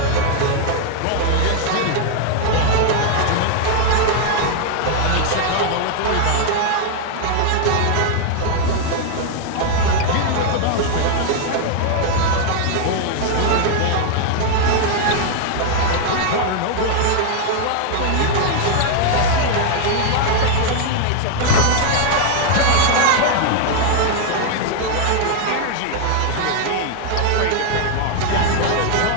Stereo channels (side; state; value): both; different; correlation 0.00